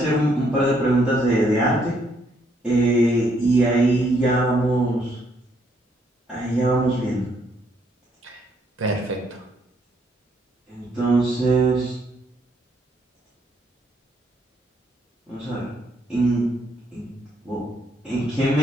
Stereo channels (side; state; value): both; normal; correlation 0.71